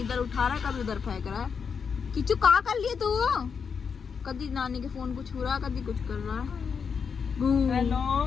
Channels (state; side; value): quieter; right; 6.2 dB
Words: उठा रहा है, कभी उधर फेंक रहा है। किचू कहाँ कर लिए तू? कभी नानी के फोन को छू रहा है, कभी कुछ कर रहा है। हेलो